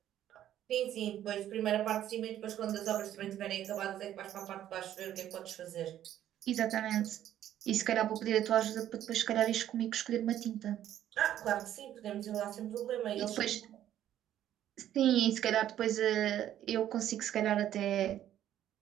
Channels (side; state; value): left; quieter; 11.6 dB